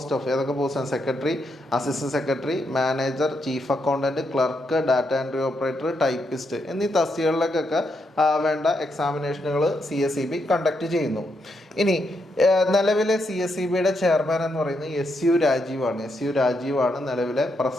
of ഏതൊക്കെ പോസ്റ്റാണ്? Secretary, assistant secretary, manager, chief accountant, clerk, data entry operator, typist എന്നീ തസ്തികകളിലേക്കൊക്കെ വേണ്ട എക്സാമിനേഷനുകൾ CSEB കണ്ടക്ട് ചെയ്യുന്നു. ഇനി നിലവിലെ CSEBയുടെ ചെയർമാൻ എന്ന് പറയുന്നത് SU രാജീവാണ് നിലവിലെ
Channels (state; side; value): normal; both; correlation 0.80